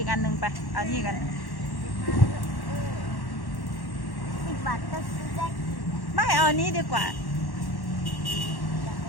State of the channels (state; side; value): late; right; 1.1 ms